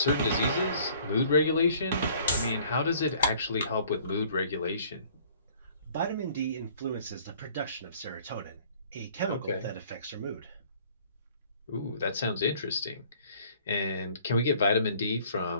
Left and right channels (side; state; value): both; inverted; correlation -0.55